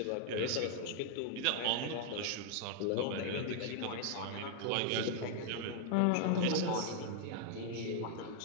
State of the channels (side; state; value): both; different; correlation 0.00